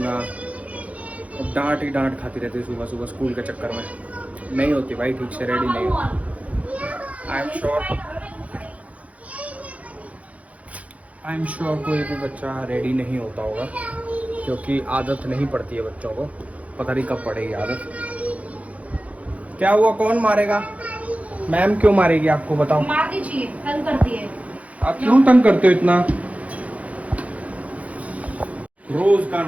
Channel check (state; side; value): late; left; 0.067 ms